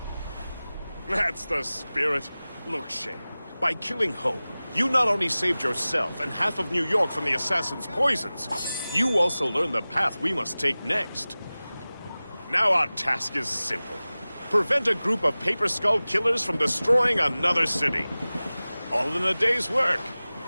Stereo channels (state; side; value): inverted; both; correlation -0.98